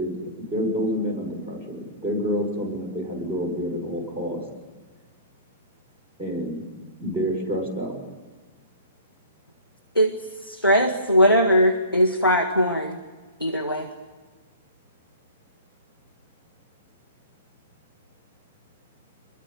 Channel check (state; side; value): inverted; both; correlation -0.44